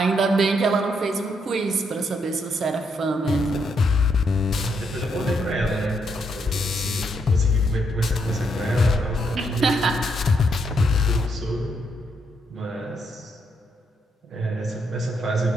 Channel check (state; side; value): normal; both; correlation 0.77